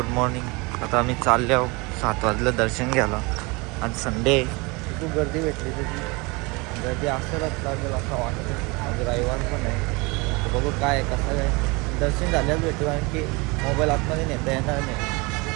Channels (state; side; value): quieter; left; 26.6 dB